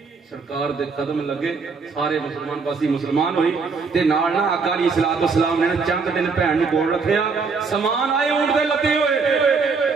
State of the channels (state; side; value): quieter; left; 4.8 dB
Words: सरकार दे कदम लगे सारे मुसलमान पासी मुसलमान होई ते नाल ना आका अली सलात व सलाम ने चंद दिन भैन नूं कोल रखिया। समान आए ऊंट दे लदे होए।